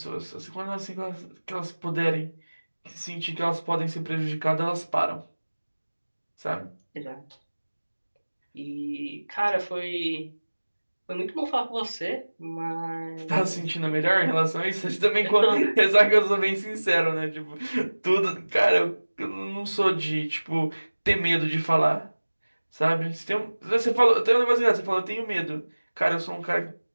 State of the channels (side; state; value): both; inverted; correlation -1.00